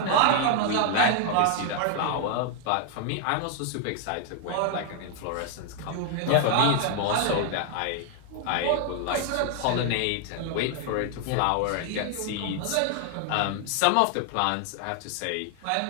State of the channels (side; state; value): both; different; correlation 0.00